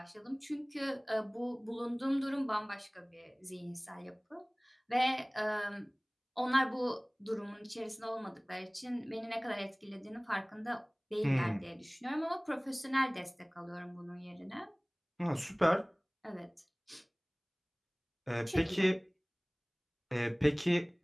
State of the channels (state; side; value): identical; both; correlation 1.00